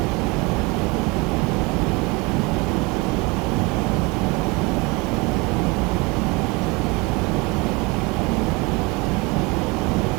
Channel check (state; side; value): quieter; left; 25.6 dB